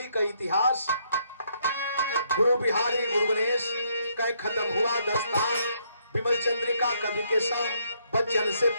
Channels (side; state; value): both; inverted; correlation -0.72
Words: का इतिहास। गुरु बिहारी गुरु गणेश का खत्म हुआ दस्तान, विमल चंद्रिका कवि के साथ बच्चन से